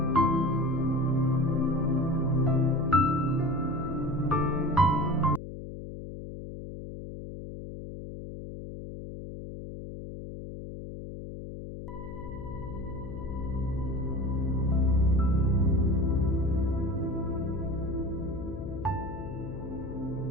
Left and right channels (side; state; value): left; noise; hum, 10 dB below the sound